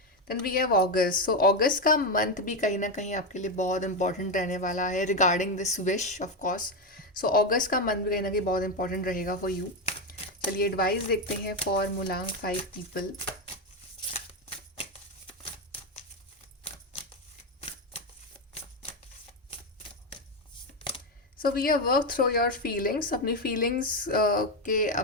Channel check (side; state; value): both; normal; correlation 0.10